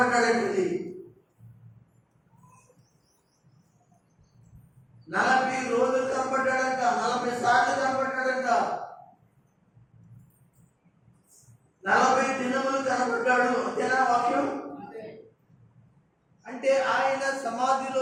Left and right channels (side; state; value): both; identical; correlation 1.00